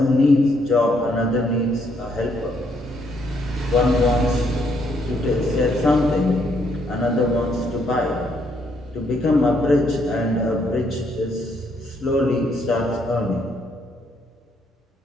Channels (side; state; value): both; normal; correlation 0.72